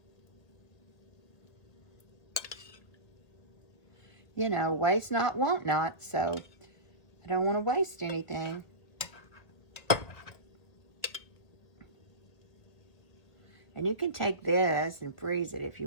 You know, waste not, want not, so I don't want to waste anything. And you can take this and freeze it if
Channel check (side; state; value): right; late; 1.7 ms